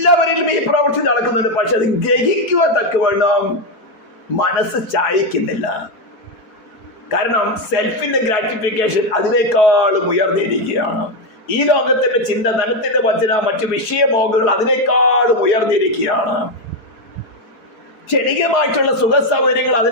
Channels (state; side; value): late; right; 4.8 ms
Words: ഈ പ്രവൃത്തി നടക്കുന്നുണ്ട്. പക്ഷെ അത് ഗ്രഹിക്കുവാൻ തക്കവണ്ണം മനസ്സ് ചായക്കുന്നില്ല. കാരണം സെൽഫിന്റെ ഗ്രാറ്റിഫിക്കേഷൻ അതിനേക്കാളും ഉയർന്നിരിക്കുകയാണ്. ഈ ലോകത്തിന്റെ ചിന്ത, ധനത്തിന്റെ വചന, മറ്റു വിഷയമോഹങ്ങൾ അതിനേക്കാളും ഉയർന്നിരിക്കുകയാണ്. ക്ഷണികമായിട്ടുള്ള സുഖ സൗകര്യങ്ങൾ